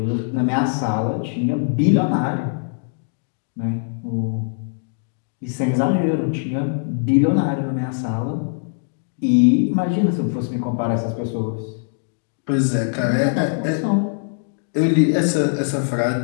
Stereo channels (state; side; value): silent; right; digital silence